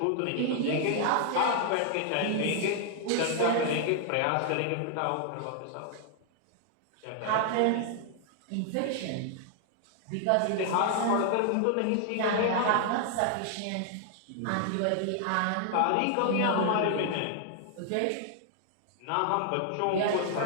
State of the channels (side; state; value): both; different; correlation 0.00